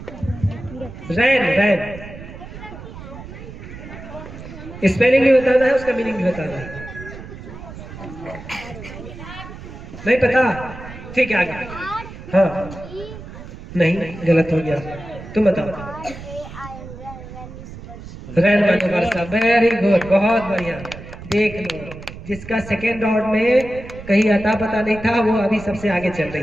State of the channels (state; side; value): noise; right; rumble, 13 dB below the sound